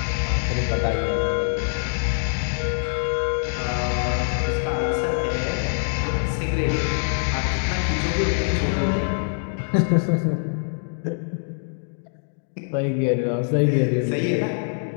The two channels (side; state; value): right; silent; digital silence